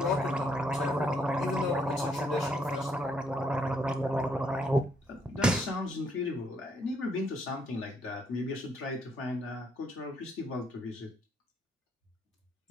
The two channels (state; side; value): normal; both; correlation 0.71